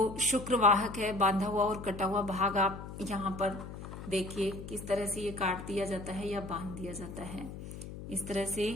शुक्रवाहक है बांधा हुआ और कटा हुआ भाग आप यहाँ पर देखिए किस तरह से ये काट दिया जाता है या बांध दिया जाता है। इस तरह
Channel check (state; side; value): noise; left; hum, 11 dB below the sound